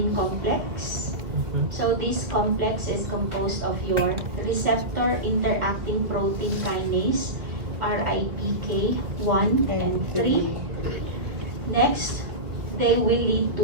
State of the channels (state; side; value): late; left; 2.2 ms